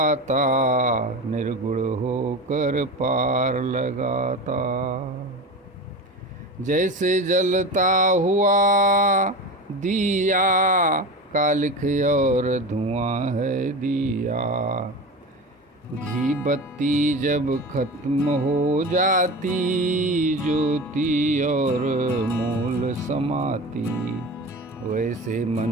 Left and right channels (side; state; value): both; normal; correlation 0.28